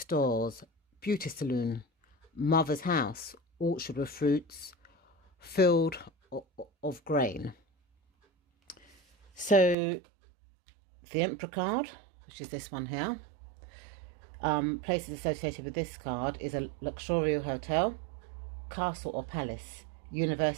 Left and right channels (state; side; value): drops out; left; at 9.8 s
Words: beauty salon, mother's house, orchard with fruits, field of grain. So the Emperor card, which is this one here, places associated with this card is a luxurious hotel, castle or palace,